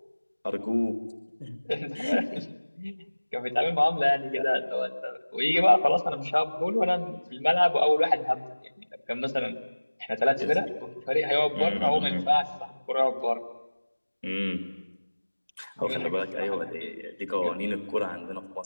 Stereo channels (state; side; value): inverted; both; correlation -1.00